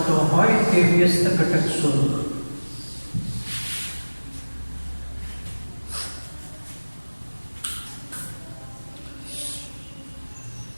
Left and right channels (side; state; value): both; inverted; correlation -1.00